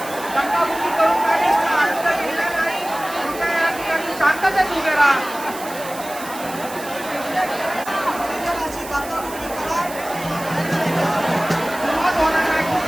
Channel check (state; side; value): noise; right; hiss, 14 dB below the sound